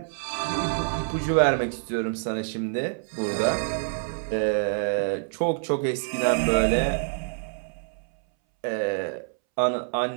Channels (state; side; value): silent; left; 61 dB below the other